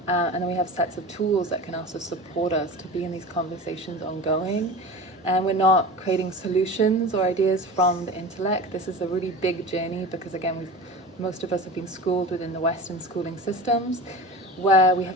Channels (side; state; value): both; normal; correlation 0.33